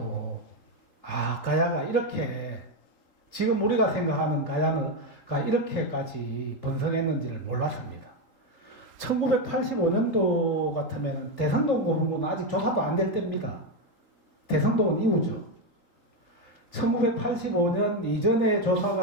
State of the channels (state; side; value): late; right; 3.8 ms